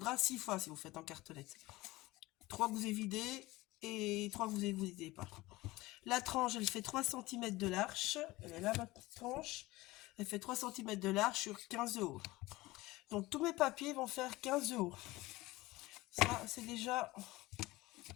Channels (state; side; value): quieter; right; 19.6 dB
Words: 6 fois si vous faites en cartonnette. 3 que vous évidez et 3 que vous évidez pas. La tranche, elle fait 3 cm de large. Elle est là, ma tranche. Elle fait 3 cm de large sur 15 de haut. Donc tous mes papiers vont faire 15 de haut. Ça, c'est déjà